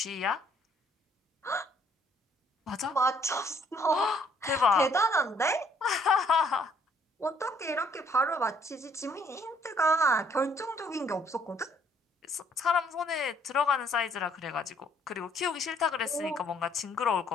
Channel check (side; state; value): both; normal; correlation 0.65